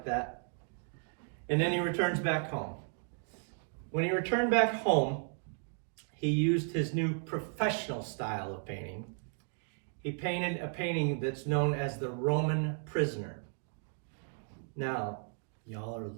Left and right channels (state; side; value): silent; left; 55 dB below the other